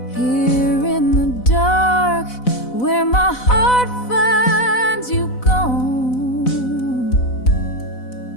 Here in the dark, where my heart finds you gone.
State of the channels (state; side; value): late; right; 4.0 ms